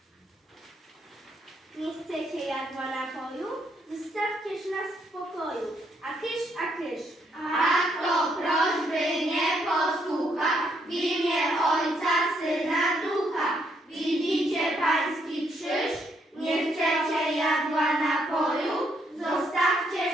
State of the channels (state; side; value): normal; both; correlation 0.73